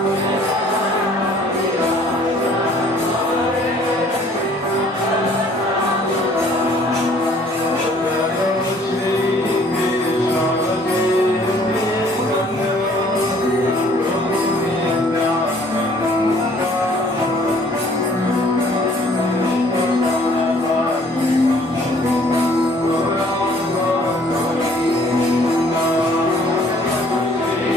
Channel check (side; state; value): both; normal; correlation 0.58